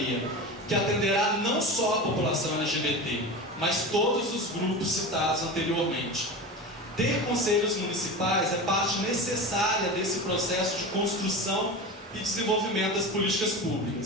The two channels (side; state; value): both; normal; correlation 0.28